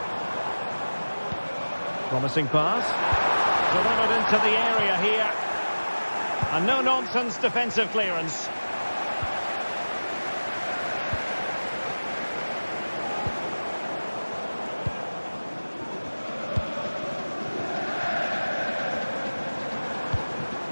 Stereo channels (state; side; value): inverted; both; correlation -1.00